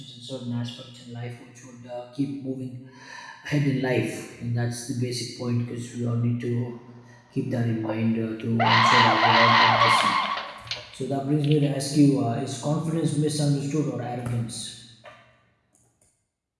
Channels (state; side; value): identical; both; correlation 1.00